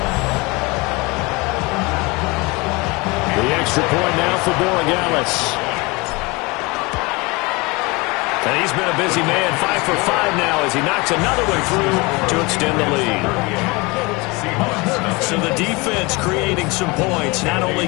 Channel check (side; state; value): right; quieter; 25.4 dB